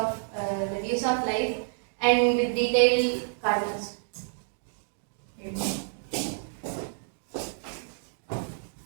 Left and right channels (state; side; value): silent; left; digital silence